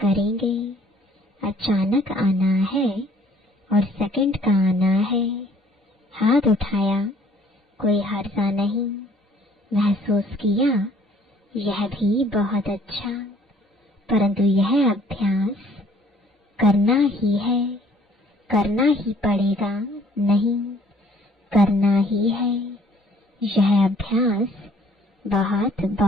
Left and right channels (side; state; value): both; normal; correlation 0.59